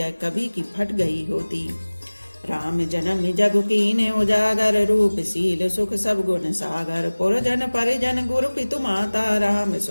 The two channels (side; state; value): both; inverted; correlation -1.00